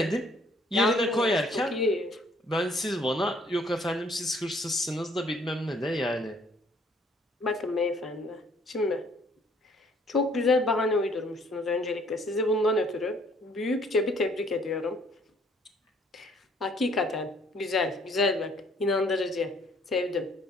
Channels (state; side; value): normal; both; correlation 0.61